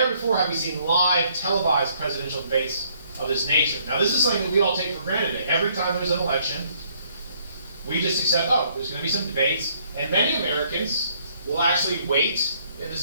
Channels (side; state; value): both; inverted; correlation -0.66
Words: before have we seen live televised presidential debates of this nature. Now this is something that we all take for granted. Every time there's an election, we just accept, there's going to be some debates, and many Americans will actually wait, and